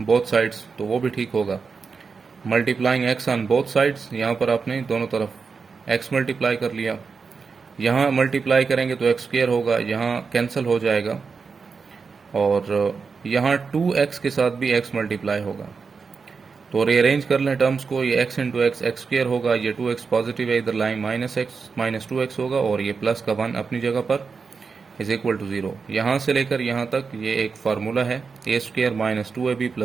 बोथ साइड्स, तो वो भी ठीक होगा। Multiplying x on both sides, यहाँ पर आपने दोनों तरफ x मल्टीप्लाई कर लिया। यहाँ मल्टीप्लाई करेंगे तो x स्क्वायर होगा, यहाँ कैंसिल हो जाएगा, और यहाँ 2x के साथ भी x मल्टीप्लाई होगा। तो रीअरेंज कर लें टर्म्स को, ये x into x x square होगा, ये 2x पॉजिटिव है, इधर लाइन -2x होगा, और ये प्लस का 1 अपनी जगह पर, इज इक्वल टू 0। यहाँ से लेकर यहाँ तक ये एक फार्मूला है, a square minus 2ab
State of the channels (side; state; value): left; quieter; 5.1 dB